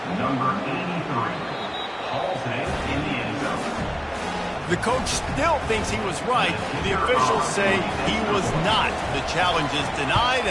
Number 83. In the end zone. The coach still thinks he was right. The officials say he was not. The challenge is denied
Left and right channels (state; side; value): identical; both; correlation 1.00